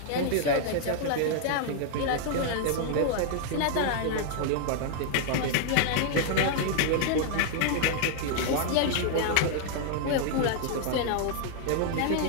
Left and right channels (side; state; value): both; different; correlation 0.00